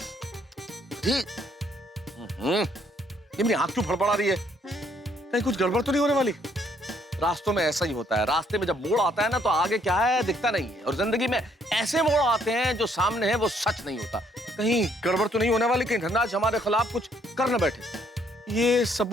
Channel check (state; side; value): normal; both; correlation 0.68